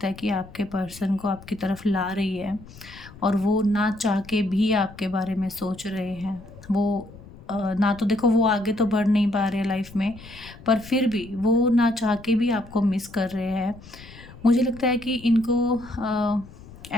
है कि आपके पर्सन को आपकी तरफ ला रही है। और वो ना चाह के भी आपके बारे में सोच रहे हैं। वो ना तो देखो वो आगे तो बढ़ नहीं पा रहे हैं लाइफ में, पर फिर भी वो ना चाह के भी आपको मिस कर रहे हैं। मुझे लगता है कि इनको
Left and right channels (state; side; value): noise; left; rumble, 19 dB below the sound